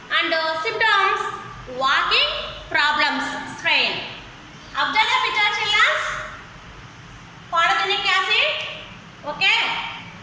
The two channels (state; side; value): identical; both; correlation 1.00